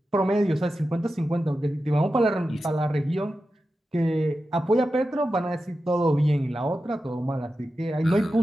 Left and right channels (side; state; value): both; normal; correlation 0.92